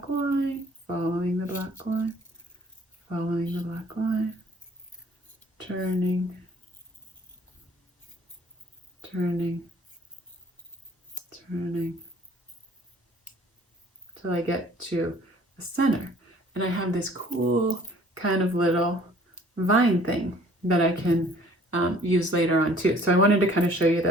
line, following the black line, following the black line, turning, turning, turning, till I get to the center. And I have this cool kind of little vine thing that I can use later on too. So I wanted to kind of show you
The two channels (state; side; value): normal; both; correlation 0.55